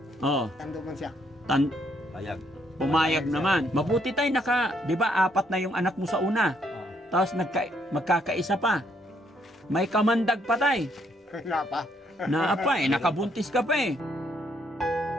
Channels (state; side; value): normal; both; correlation 0.72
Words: Oh. Tando man siya. Payag. Pumayag naman. Mabuti tayo di ba, 4 na yung anak mo sa una. Oo. Tapos magkakaisa pa. May kamandag pa tay. Wala pa. Naapa eh, nakabuntis ka pa eh.